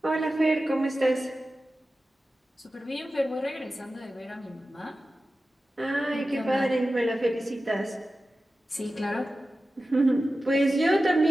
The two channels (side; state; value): both; normal; correlation 0.94